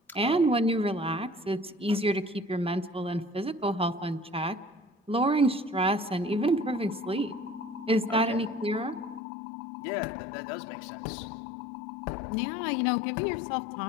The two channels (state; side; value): drops out; right; at 9.2 s